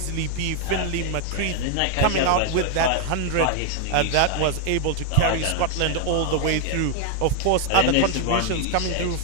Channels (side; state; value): both; different; correlation 0.00